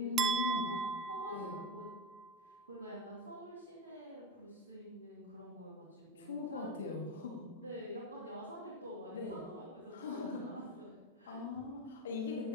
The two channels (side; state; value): both; normal; correlation 0.20